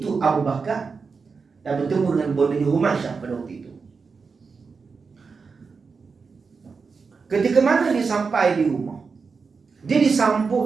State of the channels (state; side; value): quieter; left; 5.0 dB